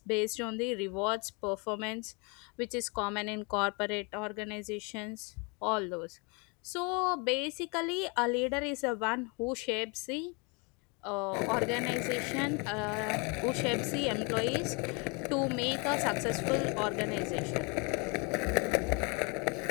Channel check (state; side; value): quieter; right; 31.7 dB